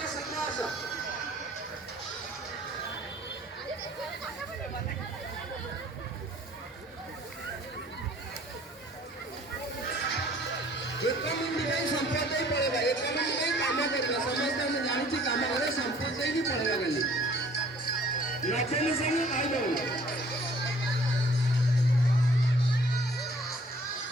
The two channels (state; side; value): normal; both; correlation 0.56